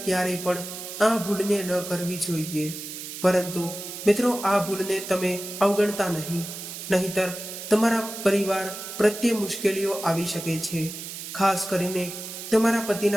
ક્યારેય પણ આ ભૂલને ન કરવી જોઈએ। પરંતુ મિત્રો, આ ભૂલને તમે અવગણતા નહીં, નહીંતર તમારા પરિવાર પ્રત્યે મુશ્કેલીઓ આવી શકે છે। ખાસ કરીને તમારા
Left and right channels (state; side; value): noise; right; hiss, 9 dB below the sound